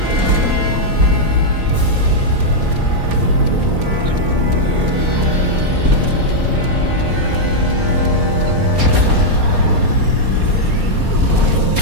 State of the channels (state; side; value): late; left; 4.3 ms